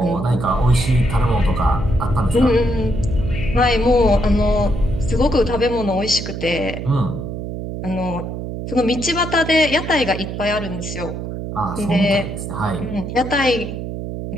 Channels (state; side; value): noise; right; hum, 6 dB below the sound